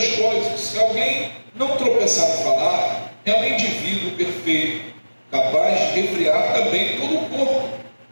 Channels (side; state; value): both; inverted; correlation -1.00